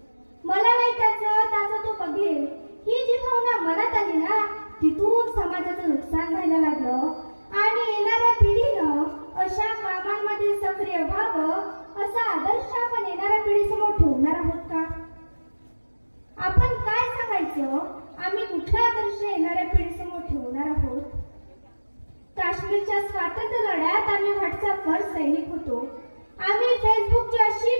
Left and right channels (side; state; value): both; inverted; correlation -1.00